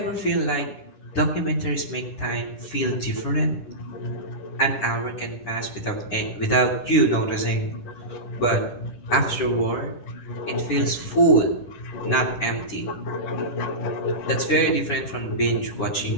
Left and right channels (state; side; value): late; right; 10 ms